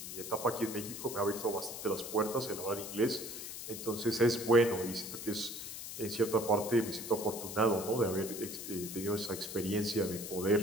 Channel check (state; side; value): noise; left; hiss, 8 dB below the sound